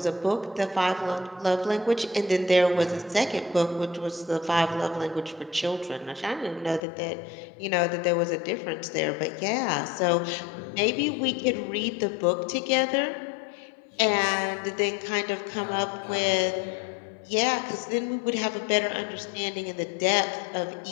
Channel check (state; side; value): drops out; right; at 6.8 s